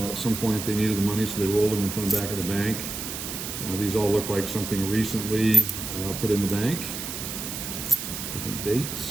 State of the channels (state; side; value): noise; right; hiss, 6 dB below the sound